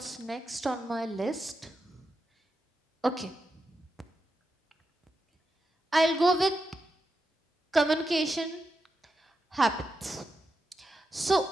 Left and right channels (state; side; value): normal; both; correlation 0.87